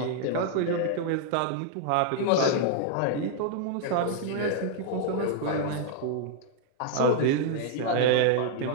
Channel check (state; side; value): different; both; correlation 0.00